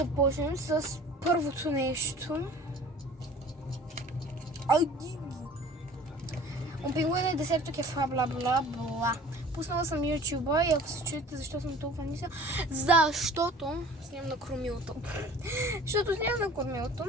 с първото нещо. Опингуена десерто кефа, бла. Пуснала съм YouTube и ако се чуете защо съм толкова ниска, защото снимам на кормилото.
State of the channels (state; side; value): normal; both; correlation 0.46